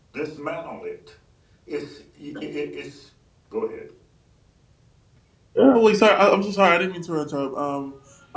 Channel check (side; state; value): both; identical; correlation 1.00